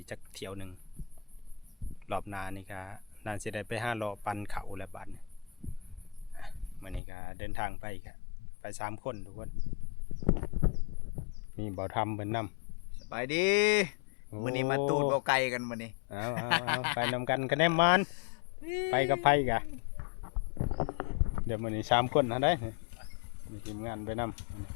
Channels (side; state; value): right; drops out; at 7.0 s